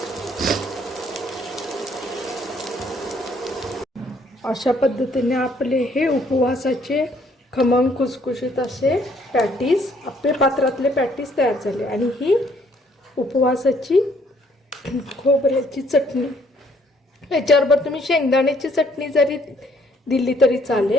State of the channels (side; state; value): both; normal; correlation 0.65